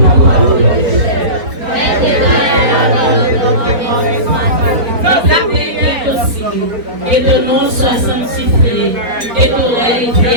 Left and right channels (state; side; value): late; left; 4.5 ms